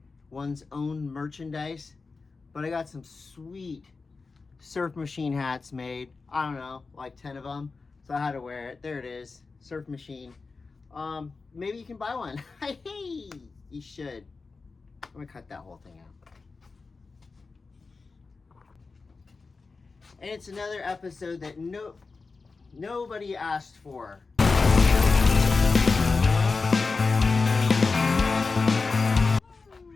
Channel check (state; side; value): quieter; right; 4.2 dB